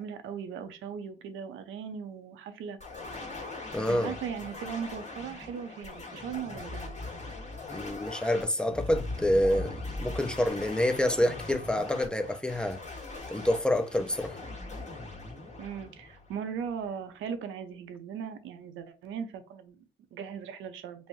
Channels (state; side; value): normal; both; correlation 0.77